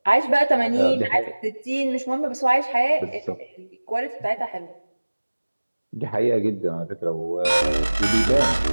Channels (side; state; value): both; inverted; correlation -1.00